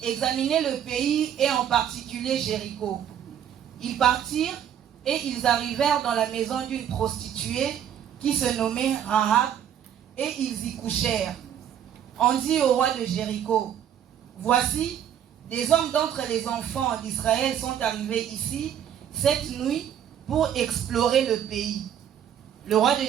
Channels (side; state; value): left; quieter; 9.6 dB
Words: examiner le pays et en particulier Jéricho. Ils partirent et ils arrivèrent dans la maison d'une prostituée qui se nommait Rahab et ils y couchèrent. On dit au roi de Jéricho: Voici, des hommes d'entre les enfants d'Israël sont arrivés ici cette nuit pour explorer le pays. Le roi de